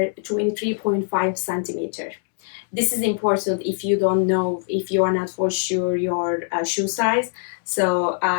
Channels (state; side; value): silent; right; digital silence